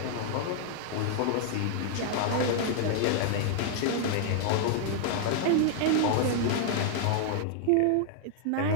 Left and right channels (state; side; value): different; both; correlation -0.01